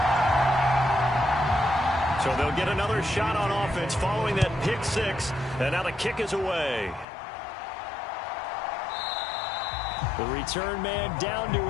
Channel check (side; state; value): right; drops out; at 7.1 s